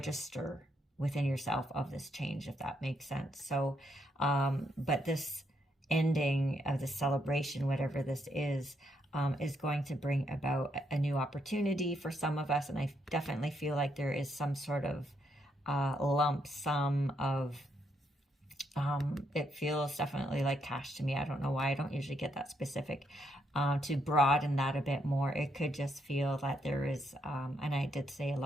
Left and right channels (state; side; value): normal; both; correlation 0.76